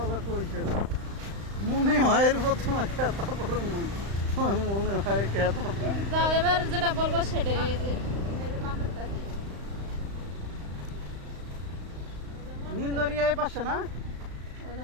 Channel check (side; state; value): left; late; 35 ms